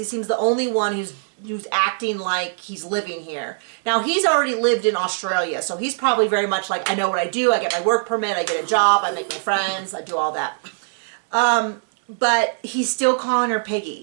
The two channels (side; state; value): left; silent; digital silence